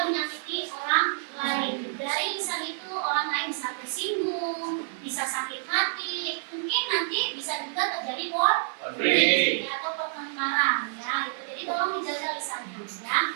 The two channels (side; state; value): left; silent; 56 dB below the other